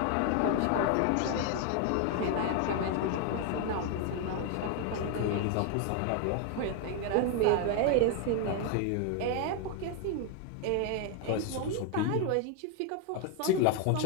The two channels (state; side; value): different; both; correlation 0.00